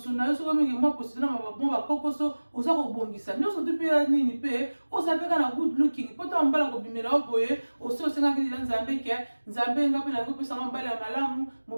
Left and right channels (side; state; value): both; inverted; correlation -1.00